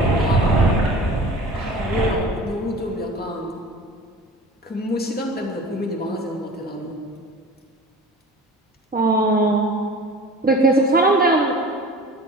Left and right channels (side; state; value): both; normal; correlation 0.40